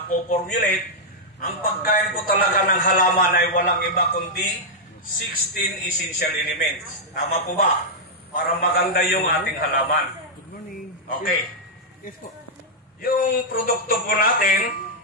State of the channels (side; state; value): both; normal; correlation -0.05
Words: ang pagkain po talaga ng halaman ay walang iba kundi 16 essential elements. Tama po ba? Para maganda yung ating halaman. Okay. Yung produkto po natin,